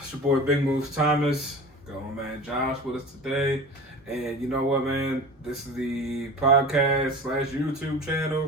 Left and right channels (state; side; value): normal; both; correlation 0.35